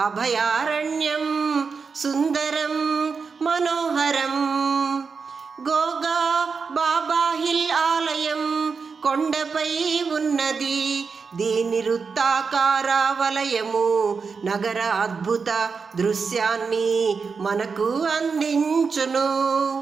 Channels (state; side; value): quieter; left; 5.2 dB